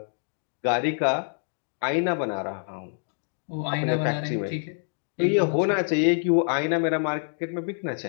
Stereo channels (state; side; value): silent; right; digital silence